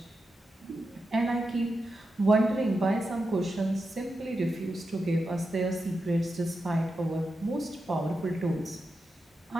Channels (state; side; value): normal; both; correlation 0.88